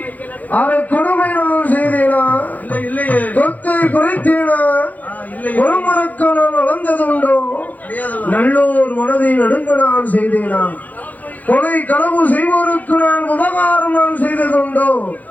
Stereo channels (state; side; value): late; right; 0.080 ms